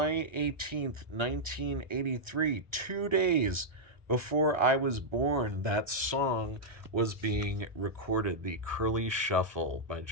18th, 1983, 2 days before I was born. That song was being recorded, The Curly Shuffle by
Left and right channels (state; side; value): late; left; 1.3 ms